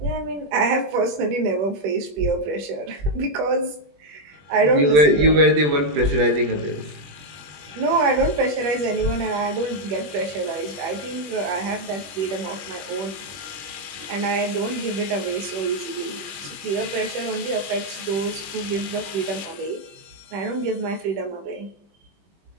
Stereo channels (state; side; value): late; left; 20 ms